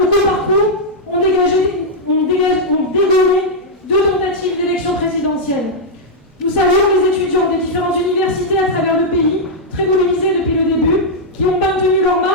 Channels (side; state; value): both; normal; correlation -0.05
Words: au coup par coup, ont dégommé 2 tentatives d'élection présidentielle. Nous saluons les étudiants des différentes universités à travers le pays, très mobilisés depuis le début, qui ont maintenu leur